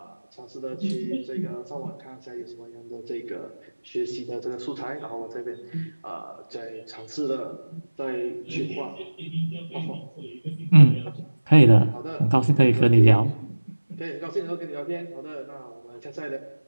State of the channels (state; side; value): inverted; both; correlation -1.00